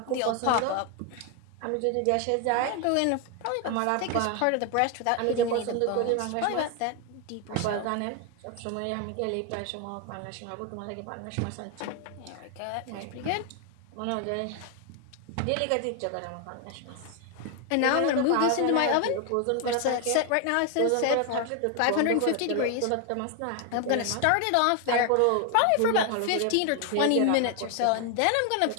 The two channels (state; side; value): different; both; correlation 0.01